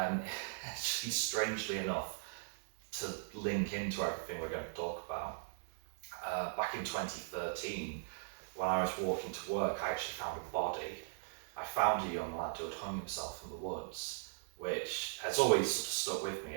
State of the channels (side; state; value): left; silent; digital silence